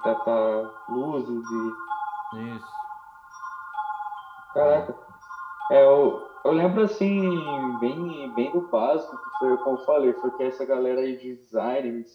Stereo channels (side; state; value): both; identical; correlation 1.00